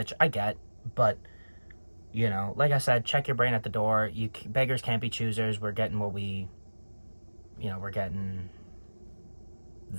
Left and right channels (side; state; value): both; inverted; correlation -1.00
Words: I get, but, you know, like I said, check your brain at the door. Beggars can't be choosers. We're getting what we're getting